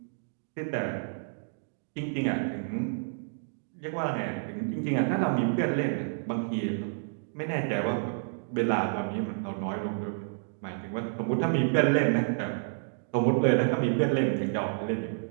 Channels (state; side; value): silent; left; digital silence